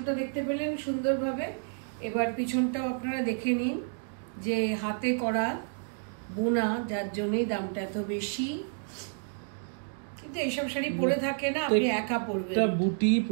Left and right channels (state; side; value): silent; left; digital silence